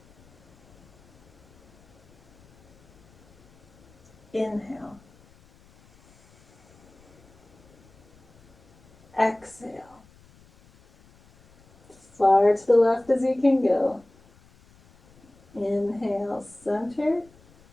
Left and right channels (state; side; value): noise; left; rumble, 29 dB below the sound